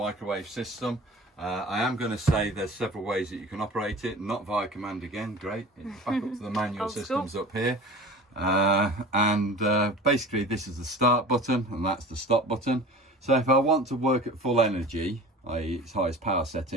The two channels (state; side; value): normal; both; correlation 0.39